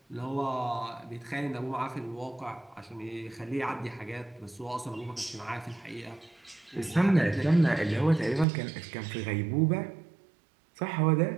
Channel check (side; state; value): left; drops out; at 8.5 s